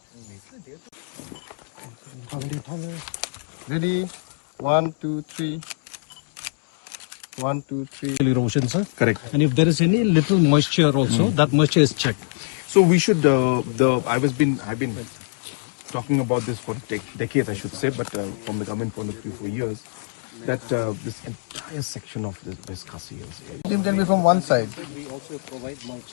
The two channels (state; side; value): silent; right; digital silence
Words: ready. 1, 2, 3. 1, 2, 3. Erosion, sir. Correct. And if there is any little moisture also, that moisture is checked. So we should. I've been talking about this for decades, I should say, but from the government point of view for years, that this entire section of this Khasi Hills. It can be from one side. We also provide